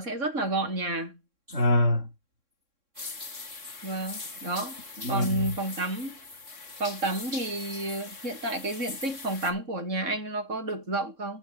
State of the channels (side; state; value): left; late; 3.6 ms